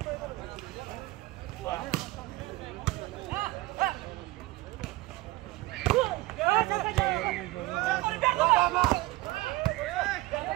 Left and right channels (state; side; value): quieter; left; 19.9 dB